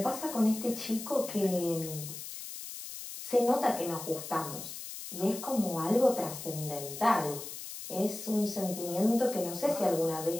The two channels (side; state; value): left; noise; hiss, 10 dB below the sound